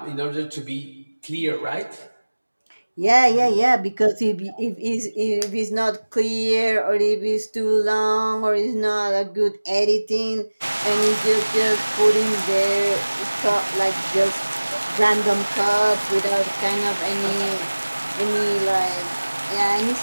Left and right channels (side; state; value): both; inverted; correlation -1.00